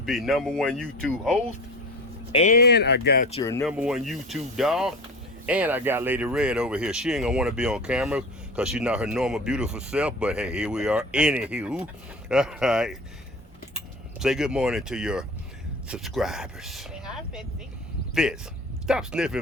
#1 YouTube host, and I got your #1 YouTube dog, and I got Lady Red over here. She ain't gonna want to be on camera because she's not her normal beautiful self, but hey, here we are. Anywho, all right. Say good morning to your subscribers. Say hi, Fitzy. Fitz, stop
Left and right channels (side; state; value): both; normal; correlation 0.34